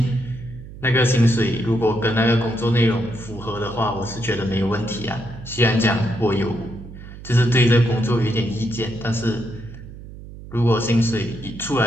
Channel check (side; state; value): right; noise; hum, 15 dB below the sound